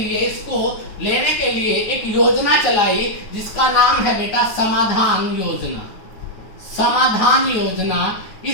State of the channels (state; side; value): late; right; 9.4 ms